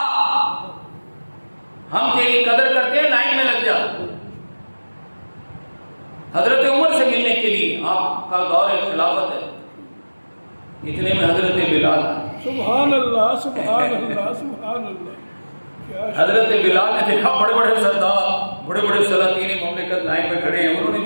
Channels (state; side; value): inverted; both; correlation -1.00